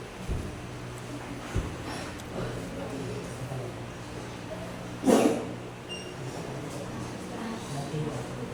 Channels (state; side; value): identical; both; correlation 1.00